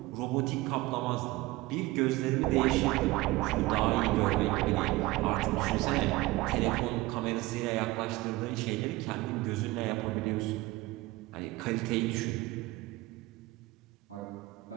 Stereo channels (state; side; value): quieter; left; 20.0 dB